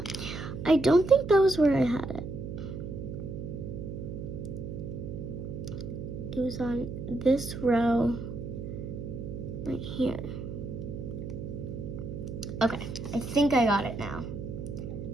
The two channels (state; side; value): noise; right; hum, 7 dB below the sound